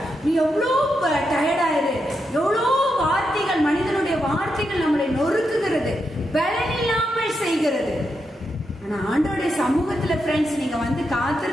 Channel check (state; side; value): normal; both; correlation 0.84